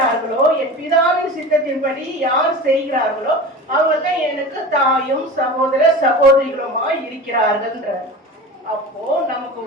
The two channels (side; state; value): both; normal; correlation 0.33